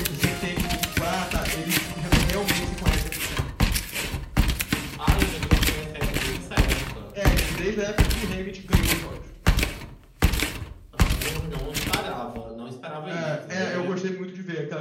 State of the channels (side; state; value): both; identical; correlation 1.00